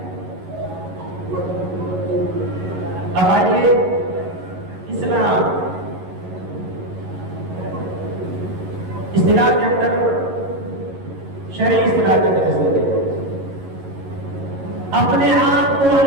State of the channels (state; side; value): late; left; 11 ms